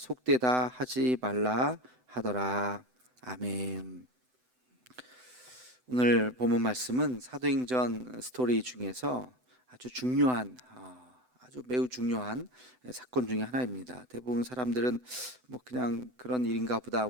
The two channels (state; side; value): late; left; 7.9 ms